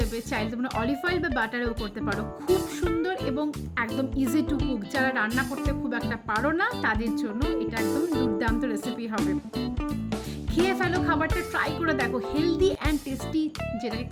চাইলে তোমরা অলিভ অয়েল বা বাটারেও করতে পারো। খুব সুন্দর এবং একদম ইজি টু কুক। যারা রান্না করতে খুব একটা পারো না তাদের জন্য এটা একদম দুর্দান্ত রেসিপি হবে। খেয়ে ফেলো, খাবারটা ট্রাই করে দেখো। হেলদি অ্যান্ড টেস্টি, যেটাকে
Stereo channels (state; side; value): identical; both; correlation 1.00